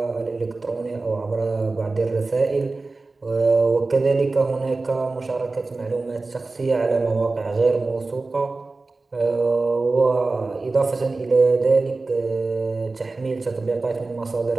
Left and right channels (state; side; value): quieter; left; 3.5 dB